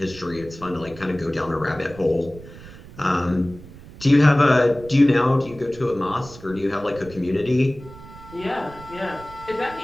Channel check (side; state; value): right; noise; rumble, 18 dB below the sound